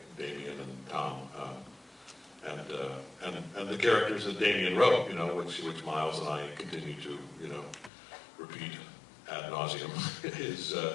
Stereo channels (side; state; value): right; drops out; at 7.9 s